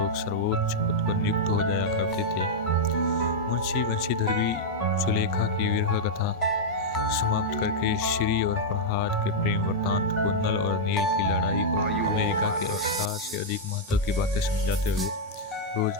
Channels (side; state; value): both; normal; correlation -0.05